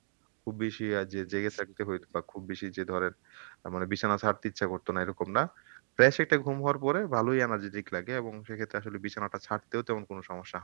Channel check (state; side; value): silent; left; digital silence